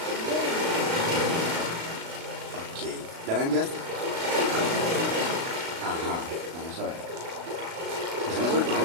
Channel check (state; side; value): late; left; 36 ms